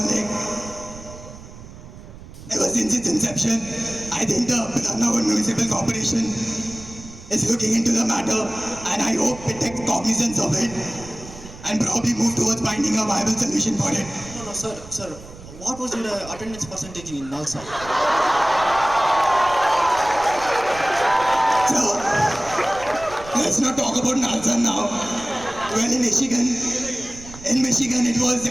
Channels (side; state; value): right; noise; rumble, 16 dB below the sound